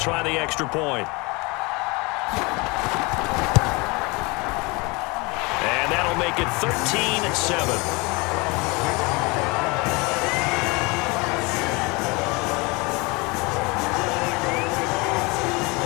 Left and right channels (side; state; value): right; quieter; 26.6 dB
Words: the extra point. And that'll make it 13-7.